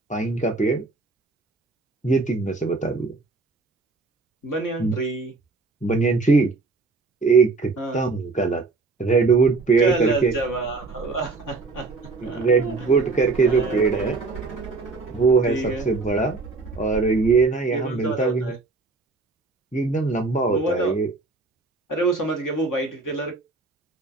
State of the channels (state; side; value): quieter; left; 3.8 dB